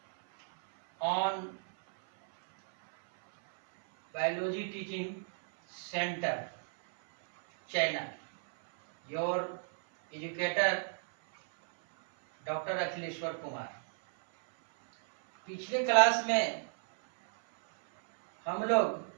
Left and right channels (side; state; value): left; silent; 56 dB below the other